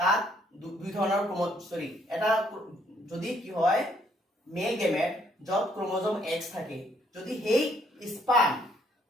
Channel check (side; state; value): both; normal; correlation 0.67